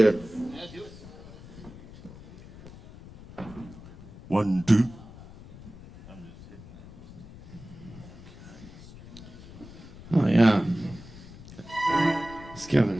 1, 2. Oh, yeah. It's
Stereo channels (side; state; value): left; noise; rumble, 17 dB below the sound